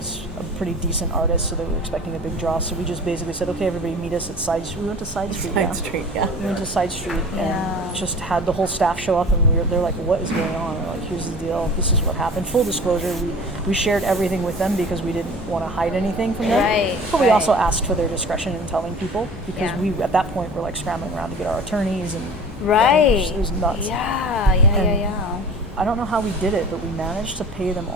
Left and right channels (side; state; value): both; normal; correlation 0.41